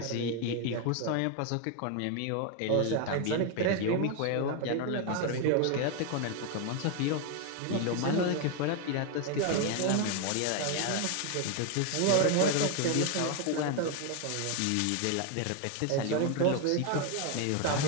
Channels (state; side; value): different; both; correlation 0.01